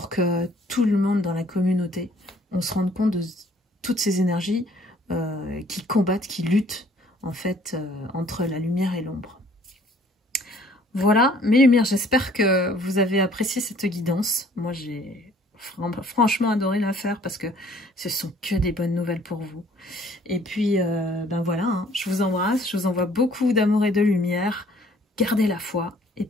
que tout le monde dans la communauté, on se rende compte de toutes ces énergies qui combattent, qui luttent en fait entre la lumière et l'ombre. Voilà, mes lumières, j'espère que vous avez apprécié cette guidance. Moi, j'ai franchement adoré la faire parce que ce sont que des bonnes nouvelles pour vous. Et puis, ben voilà, hein, je vous embrasse, je vous envoie beaucoup d'amour et de lumière. Gardez la foi et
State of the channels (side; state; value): both; normal; correlation 0.58